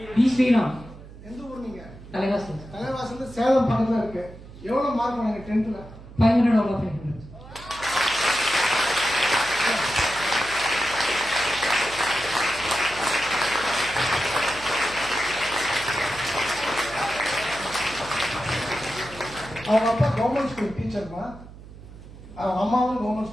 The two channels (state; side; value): noise; right; hum, 17 dB below the sound